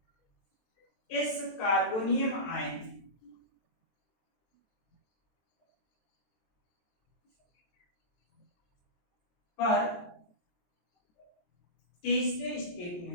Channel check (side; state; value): right; late; 23 ms